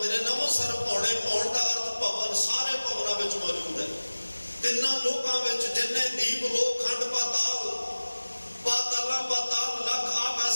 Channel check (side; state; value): both; inverted; correlation -1.00